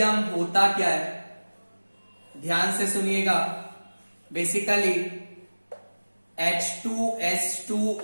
होता क्या है, ध्यान से सुनिएगा। बेसिकली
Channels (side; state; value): both; inverted; correlation -1.00